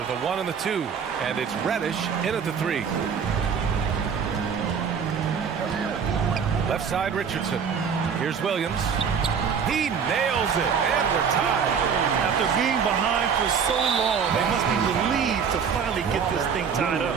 the 1 and the 2. And it's Reddish in at the 3. Left side Richardson. Here's Williams. He nails it, and we're tied. After being behind for so long, they must be relieved to finally get this thing tied up.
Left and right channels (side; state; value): left; quieter; 6.7 dB